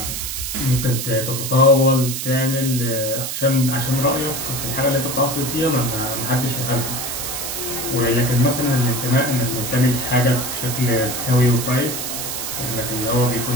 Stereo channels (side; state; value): right; noise; hiss, 4 dB below the sound